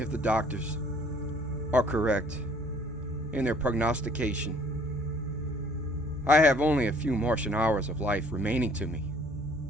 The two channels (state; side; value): normal; both; correlation 0.57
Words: the doctors are correct in their prognostication, I have only a few Martian hours of life remaining to me.